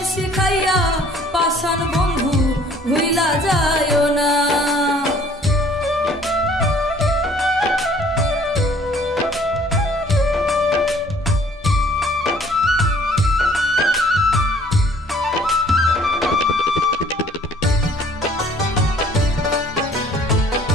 শিখাইয়া পাষাণ বন্ধু ভুইলা যায়ও না।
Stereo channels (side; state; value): both; normal; correlation 0.56